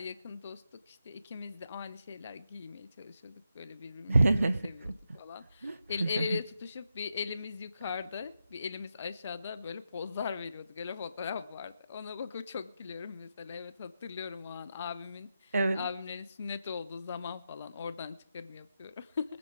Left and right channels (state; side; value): inverted; both; correlation -0.86